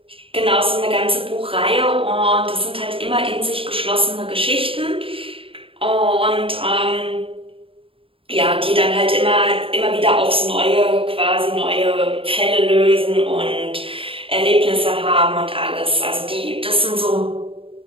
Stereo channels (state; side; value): late; left; 0.26 ms